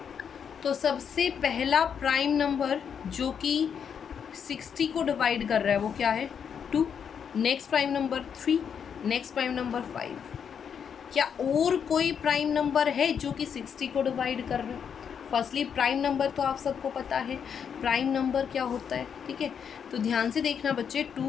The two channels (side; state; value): right; quieter; 7.4 dB